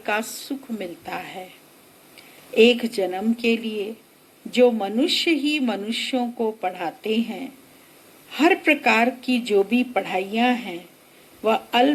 का सुख मिलता है। एक जन्म के लिए जो मनुष्य ही मनुष्यों को पढ़ाते हैं, हर प्रकार की जो भी पढ़ाइयाँ हैं वह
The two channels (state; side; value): identical; both; correlation 1.00